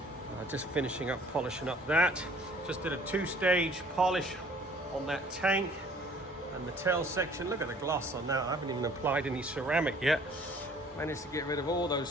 Just finishing up polishing up that. Just did a 2-stage polish on that tank and the tail section. Look at the gloss on that. I haven't even applied any ceramic yet. Managed to get rid of all those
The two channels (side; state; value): both; normal; correlation 0.54